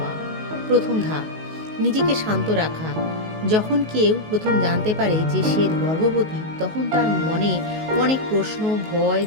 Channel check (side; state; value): left; late; 19 ms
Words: প্রথম ধাপ, নিজেকে শান্ত রাখা। যখন কেউ প্রথম জানতে পারে যে সে গর্ভবতী, তখন তার মনে অনেক প্রশ্ন, ভয়,